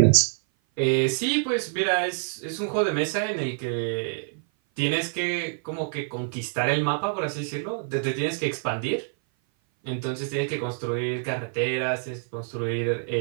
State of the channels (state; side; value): silent; left; 57 dB below the other